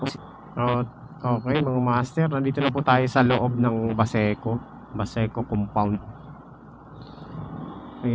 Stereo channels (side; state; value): both; identical; correlation 1.00